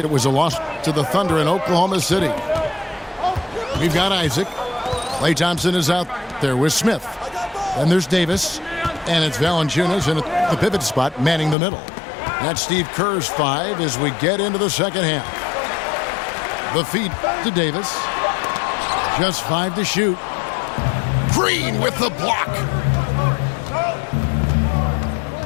it was a loss to the Thunder in Oklahoma City. We've got Isaac. Klay Thompson is out there with Smith. And there's Davis. And it's Valanciunas in the pivot spot, manning the middle. That's Steve Kerr's 5 as we get into the second half. The feed to Davis. Just 5 to shoot. Green with the block.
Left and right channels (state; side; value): drops out; right; at 11.6 s